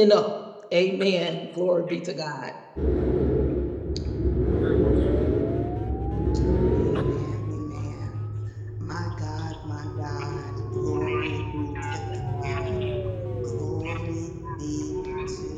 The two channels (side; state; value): both; identical; correlation 1.00